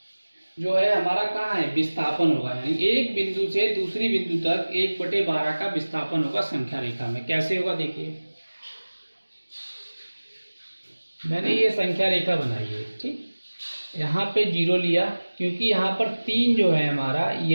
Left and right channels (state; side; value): inverted; both; correlation -1.00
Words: जो है हमारा कहाँ है, विस्थापन होगा। यानी एक बिंदु से दूसरी बिंदु तक 1/12 का विस्थापन होगा संख्या रेखा में। कैसे होगा देखिए, मैंने ये संख्या रेखा बनाई है। ठीक, यहाँ पे 0 लिया क्योंकि यहाँ पर 3 जो है हमारा,